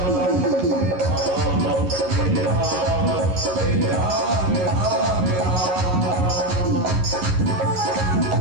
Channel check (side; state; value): left; late; 11 ms